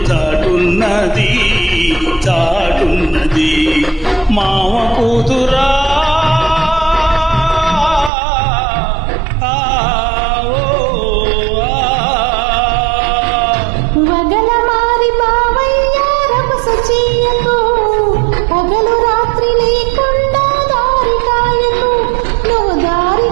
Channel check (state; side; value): drops out; left; at 8.1 s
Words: చాటున్నది చాటున్నది. మావ కూతురా పగలు రాత్రి లేకుండా దారి కాయకు, నువ్వు దారి